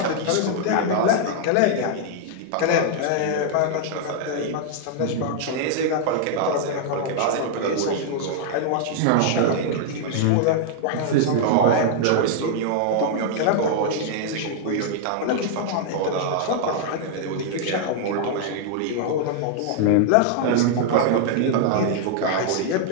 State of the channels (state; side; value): different; both; correlation -0.01